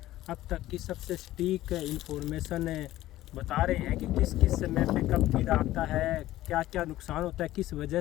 अब तक की सबसे सटीक इंफॉर्मेशन बता रहे हैं कि किस किस समय पे कब कीड़ा आता है, क्या क्या नुकसान होता है, किस वजह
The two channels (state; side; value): quieter; right; 15.2 dB